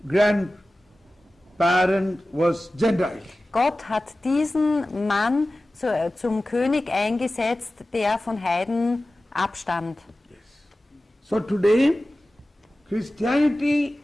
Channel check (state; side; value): normal; both; correlation 0.96